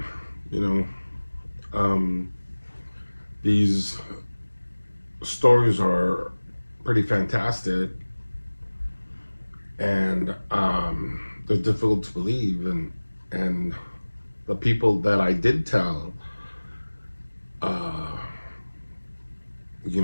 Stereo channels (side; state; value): both; inverted; correlation -1.00